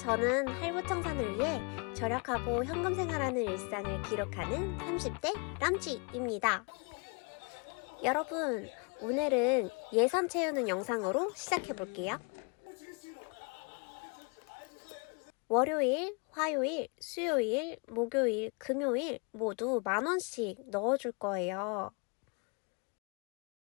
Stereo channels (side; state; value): right; quieter; 34.7 dB